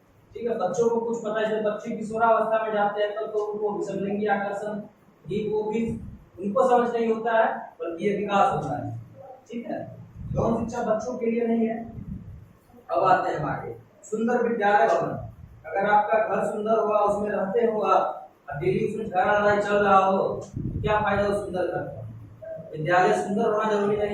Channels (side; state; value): both; identical; correlation 1.00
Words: ठीक है, बच्चों को कुछ पता है, जब बच्चे किशोरावस्था में जाते हैं तो उनको विषमलिंगी आकर्षण भी वो भी उनको समझ नहीं होता है, बल्कि ये विकास होता है। ठीक है, यौन शिक्षा बच्चों के लिए नहीं है। अब आते हैं आगे, सुंदर विद्यालय भवन। अगर आपका घर सुंदर हुआ, उसमें रहते हो आप, डेली उसमें झगड़ा लड़ाई चल रहा हो, क्या फायदा उस सुंदर घर का? विद्यालय सुंदर होना जरूरी